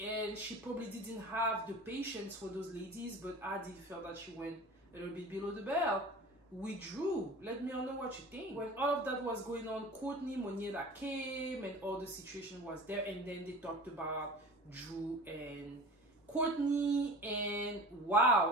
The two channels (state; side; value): normal; both; correlation 0.37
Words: and she probably didn't have the patience for those ladies, but I did feel that she went a little bit below the belt with Drew. Let me know what you think. When all of that was going on, Courtney, Moniela came, and all the situation was there, and then they talked about Drew and Courtney, and